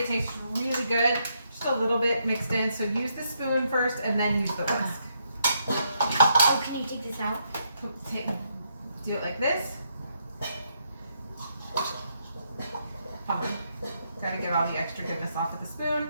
it tastes really good. Just a little bit mixed in. So use the spoon first, and then use the whisk. Oh, can you take this out? Do it like this. Oh, gotta get all the extra goodness off of the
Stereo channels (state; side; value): inverted; both; correlation -0.76